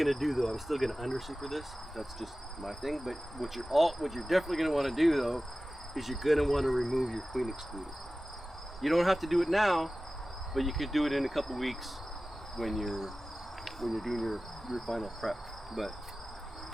do though, I'm still gonna under super this. That's just my thing. But what you're definitely gonna want to do though, is you're gonna want to remove your queen excluder. You don't have to do it now, but you could do it in a couple weeks when you're doing your final prep. But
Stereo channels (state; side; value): normal; both; correlation 0.96